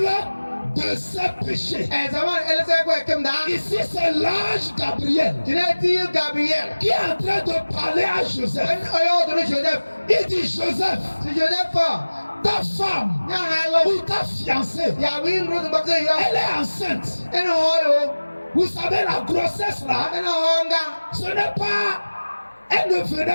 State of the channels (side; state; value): both; inverted; correlation -1.00